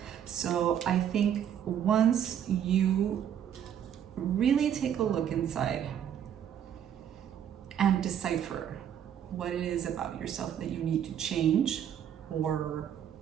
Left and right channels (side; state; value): left; quieter; 9.3 dB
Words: So I think once you really take a look inside and decipher what it is about yourself that you need to change or